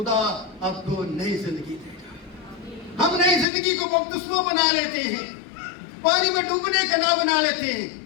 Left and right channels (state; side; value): drops out; right; at 3.5 s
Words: آپ کو نئی زندگی دے گا۔ ہم نئی زندگی کو مقدسوں بنا لیتے ہیں، پانی میں ڈوبنے کا نہ بنا لیتے ہیں۔